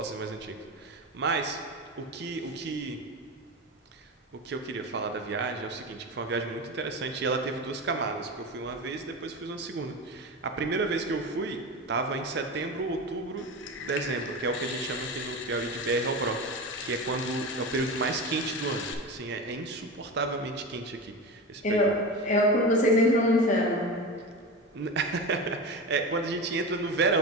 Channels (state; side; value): normal; both; correlation 0.25